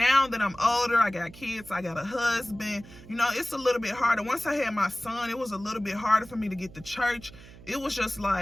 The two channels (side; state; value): right; noise; hum, 19 dB below the sound